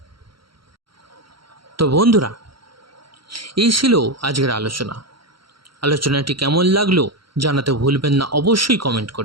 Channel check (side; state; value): left; late; 0.74 ms